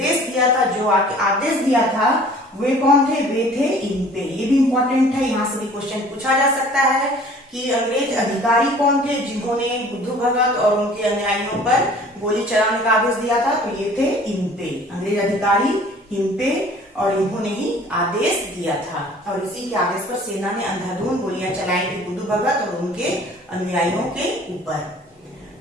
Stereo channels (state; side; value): normal; both; correlation 0.50